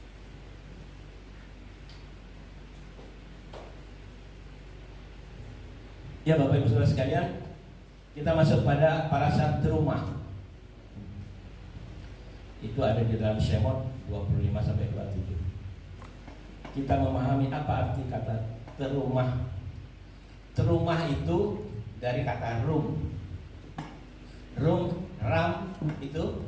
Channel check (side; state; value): both; identical; correlation 1.00